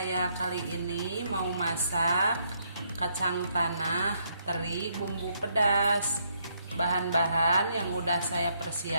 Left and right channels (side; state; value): both; inverted; correlation -0.73